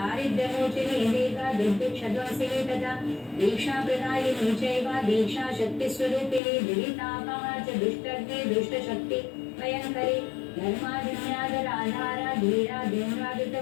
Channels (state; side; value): drops out; right; at 6.4 s